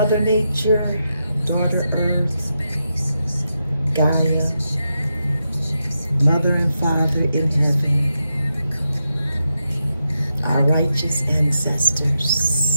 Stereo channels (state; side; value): inverted; both; correlation -0.86